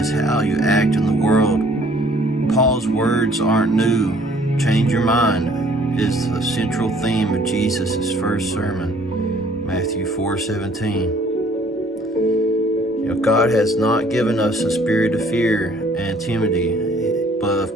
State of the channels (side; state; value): both; normal; correlation 0.58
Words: how you act in the world. Paul's words aren't new. Change your mind is the central theme of Jesus' first sermon, Matthew 4:17. God has not given us a spirit of fear and timidity, but